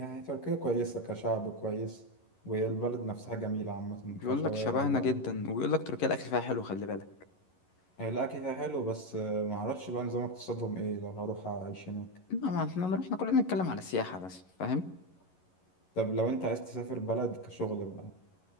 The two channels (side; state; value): right; late; 11 ms